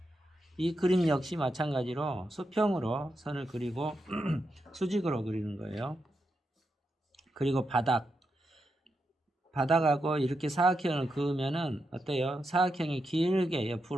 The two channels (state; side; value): normal; both; correlation 0.85